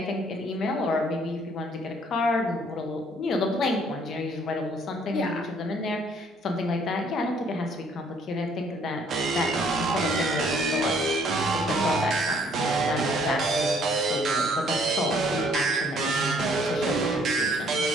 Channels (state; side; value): normal; both; correlation 0.62